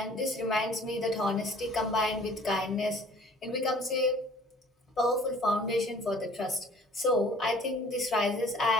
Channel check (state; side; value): normal; both; correlation 0.52